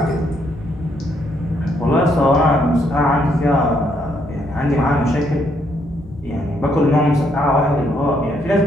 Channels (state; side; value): normal; both; correlation 0.73